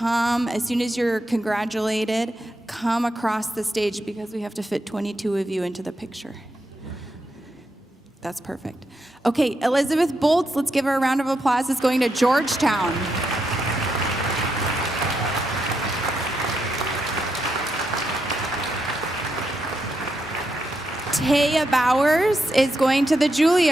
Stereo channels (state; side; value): normal; both; correlation 0.83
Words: as soon as you're congratulated, come across the stage because we have to fit 22 of you into the picture. That's perfect. Okay, Elizabeth Bolts, let's give her a round of applause, is going to Georgetown. Taya Bowers is going to the